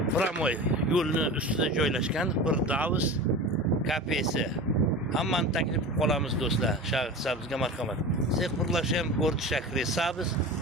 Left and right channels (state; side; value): normal; both; correlation 0.32